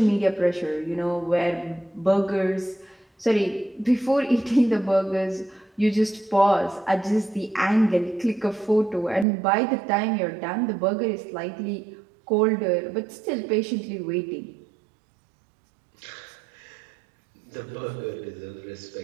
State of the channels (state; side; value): drops out; left; at 9.2 s